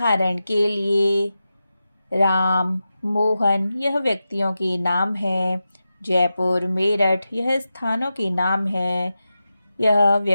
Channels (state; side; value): inverted; both; correlation -0.91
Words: के लिए राम, मोहन यह व्यक्तियों के नाम हैं। जयपुर, मेरठ यह स्थानों के नाम हैं। यह